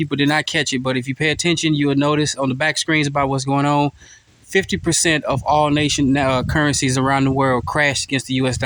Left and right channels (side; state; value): both; identical; correlation 1.00